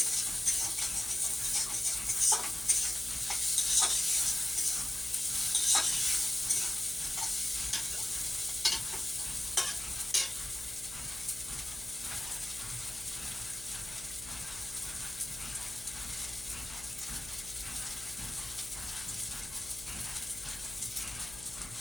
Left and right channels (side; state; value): left; noise; hum, 17 dB below the sound